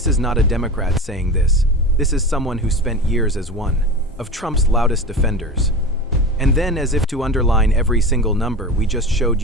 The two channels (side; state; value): both; normal; correlation 0.30